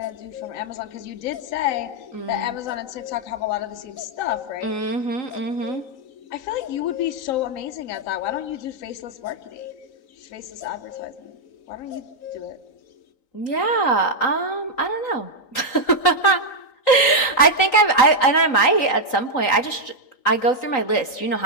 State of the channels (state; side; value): late; right; 3.9 ms